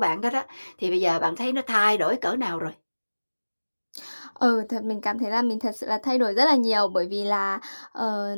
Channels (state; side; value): inverted; both; correlation -1.00